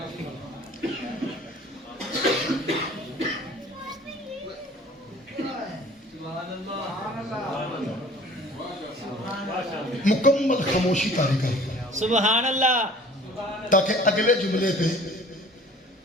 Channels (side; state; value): both; normal; correlation 0.49